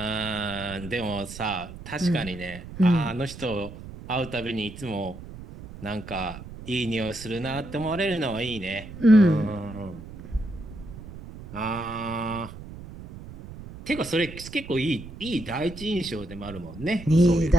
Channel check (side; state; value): right; noise; rumble, 13 dB below the sound